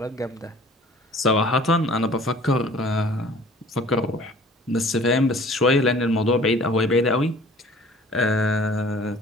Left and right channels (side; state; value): both; normal; correlation 0.50